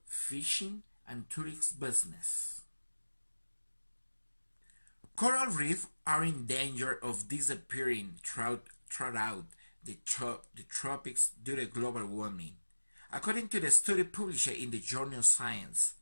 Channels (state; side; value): inverted; both; correlation -1.00